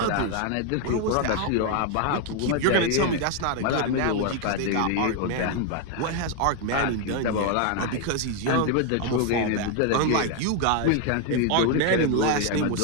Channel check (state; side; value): different; both; correlation 0.01